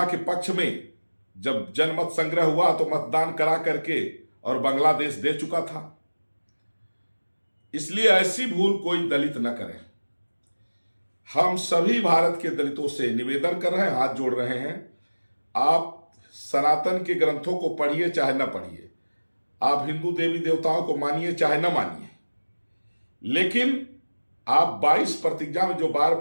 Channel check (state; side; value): inverted; both; correlation -1.00